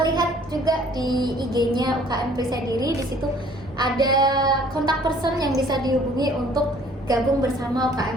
lihat juga di IG-nya UKM Perisai Diri. Di situ ada kontak person yang bisa dihubungi untuk gabung bersama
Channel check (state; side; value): normal; both; correlation 0.56